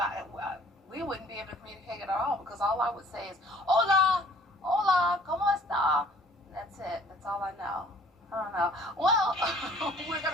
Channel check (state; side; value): normal; both; correlation 0.55